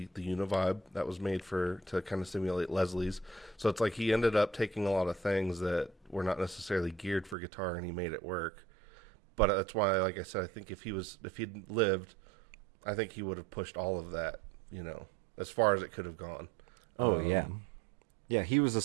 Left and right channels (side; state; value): left; drops out; at 7.4 s